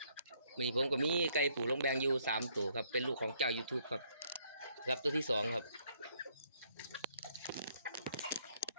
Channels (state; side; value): inverted; both; correlation -0.68